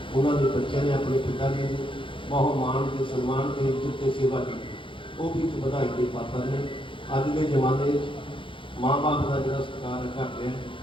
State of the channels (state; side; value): late; right; 0.25 ms